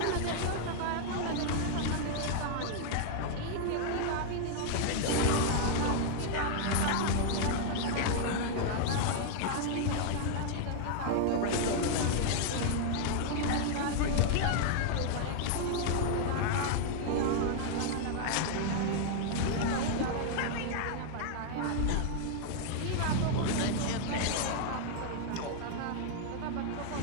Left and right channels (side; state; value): both; different; correlation 0.00